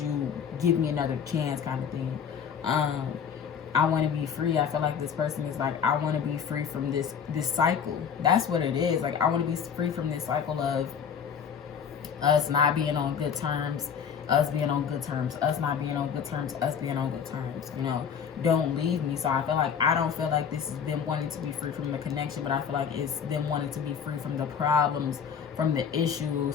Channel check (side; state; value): right; quieter; 7.3 dB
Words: you give me another chance, kind of thing. I want to be free. I feel like this person is like, I want to be free from this cycle. That's what it is. Like, I want to be free from this cycle of us not being on good terms, us being on good terms, us not being on good terms, us being on good terms. Don't leave me. So I feel like, I don't feel like this is them wanting to be free from the connection, but I feel like it's them wanting to be free from the problems, from the